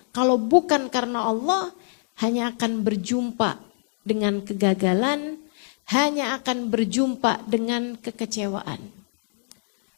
kalau bukan karena Allah, hanya akan berjumpa dengan kegagalan, hanya akan berjumpa dengan kekecewaan.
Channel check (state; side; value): silent; right; digital silence